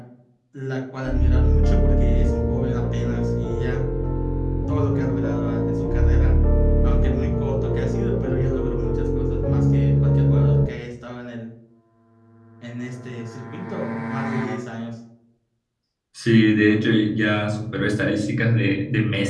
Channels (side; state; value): both; identical; correlation 1.00